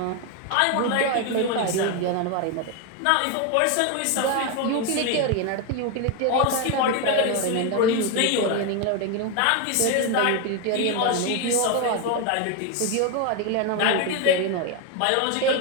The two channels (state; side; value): different; both; correlation 0.02